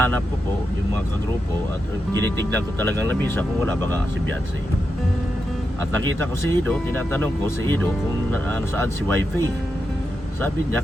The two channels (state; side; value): normal; both; correlation 0.87